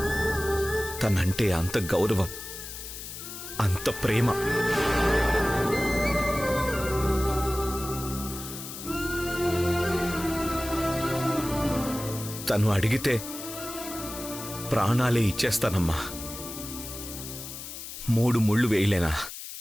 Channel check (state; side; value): noise; left; hiss, 10 dB below the sound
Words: తనంటే అంత గౌరవం, అంత ప్రేమ. తను అడిగితే ప్రాణాలే ఇచ్చేస్తానమ్మా. 3 ముళ్ళు వేయలేనా?